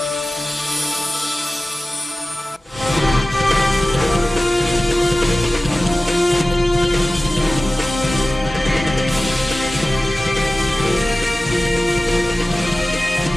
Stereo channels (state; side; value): normal; both; correlation 0.96